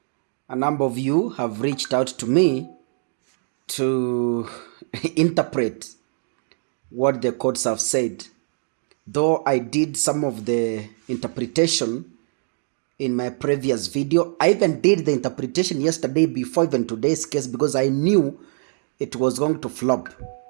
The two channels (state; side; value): silent; left; 63 dB below the other